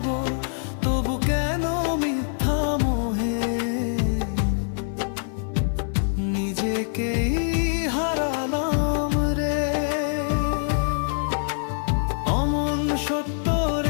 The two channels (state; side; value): silent; right; 56 dB below the other